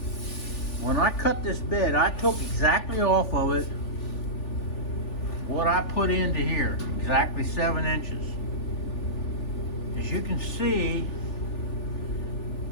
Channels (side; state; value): right; late; 3.4 ms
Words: when I cut this bed, I took exactly off of it what I put into here, exactly 7 inches. As you can see,